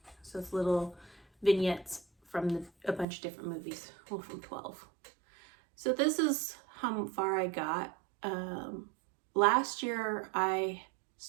So it's little vignettes from a bunch of different movies, well, from 12. So this is how far I got. Last year I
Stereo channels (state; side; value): drops out; left; at 3.1 s